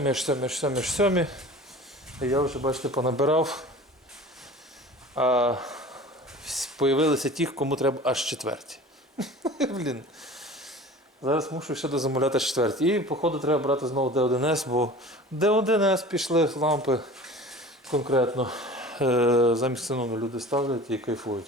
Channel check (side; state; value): both; normal; correlation 0.40